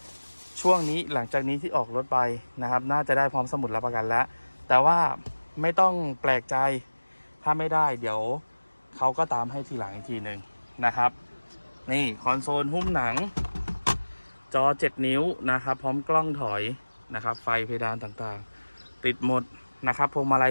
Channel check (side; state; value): both; inverted; correlation -1.00